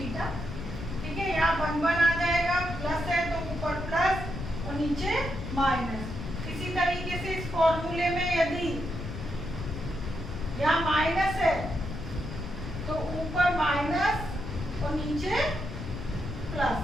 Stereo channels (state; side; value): noise; left; rumble, 7 dB below the sound